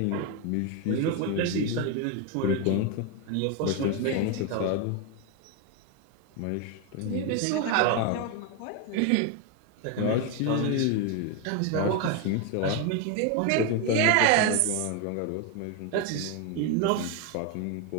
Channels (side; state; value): both; different; correlation 0.02